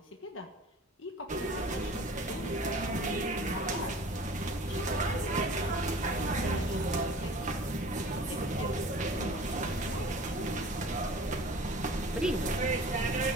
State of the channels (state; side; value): normal; both; correlation 0.44